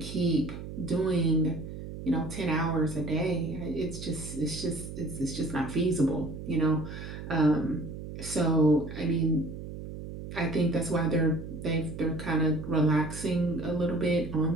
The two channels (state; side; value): noise; right; hum, 10 dB below the sound